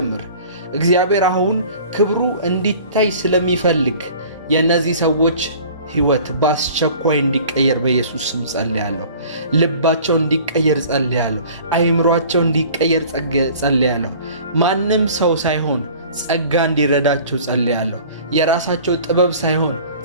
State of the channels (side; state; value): both; inverted; correlation -0.46